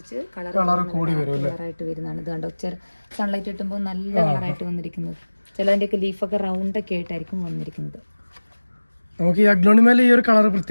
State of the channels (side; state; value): both; inverted; correlation -1.00